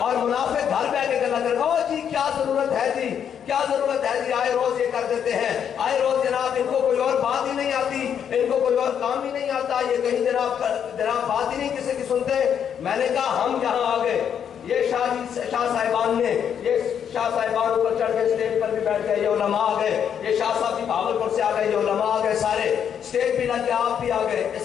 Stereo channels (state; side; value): quieter; right; 8.4 dB